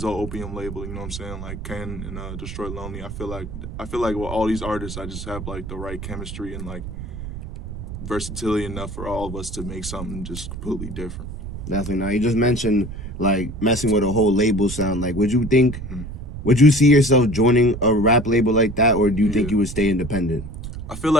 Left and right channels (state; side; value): noise; right; rumble, 9 dB below the sound